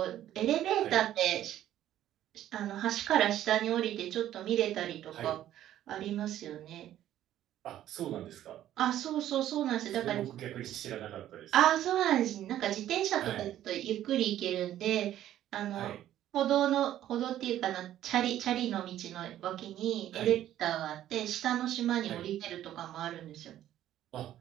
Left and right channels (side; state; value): left; quieter; 12.3 dB